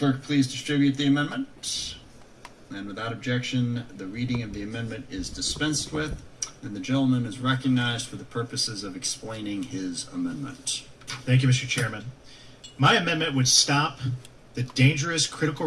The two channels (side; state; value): both; identical; correlation 1.00